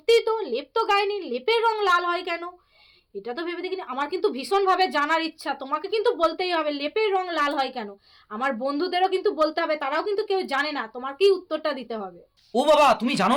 তো লেপ তো গায়নি, লেপের রং লাল হয় কেন? এটা তো ভেবে দেখিনি। আমার কিন্তু ভীষণভাবে জানার ইচ্ছা, তোমাকে কিন্তু বলতেই হবে লেপের রং লাল হয় কেন। আমার বন্ধুদেরও কিন্তু বলতে হবে, তারাও কিন্তু কেউ জানে না, তোমাকেই উত্তরটা দিতে হবে। ও বাবা, তুমি জানো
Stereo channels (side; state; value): both; identical; correlation 1.00